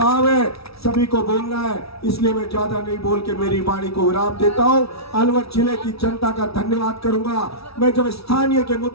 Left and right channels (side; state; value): right; late; 0.76 ms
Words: है, सभी को बोलना है, इसलिए मैं ज्यादा नहीं बोल के मेरी वाणी को विराम देता हूं। अलवर जिले की जनता का धन्यवाद करूंगा। मैं जब स्थानीय के